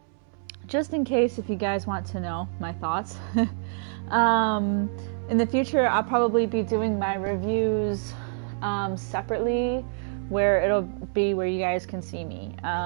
Just in case if you guys want to know my thoughts. In the future, I'll probably be doing my reviews separately, where it'll be where you guys can see me.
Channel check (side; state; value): left; silent; 61 dB below the other